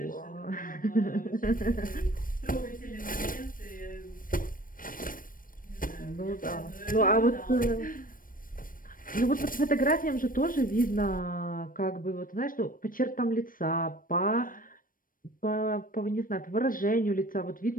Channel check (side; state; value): right; late; 0.40 ms